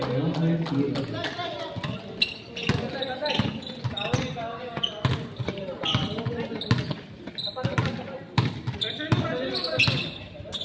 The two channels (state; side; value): identical; both; correlation 1.00